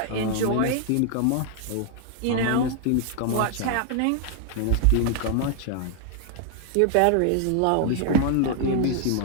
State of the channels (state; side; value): different; both; correlation 0.00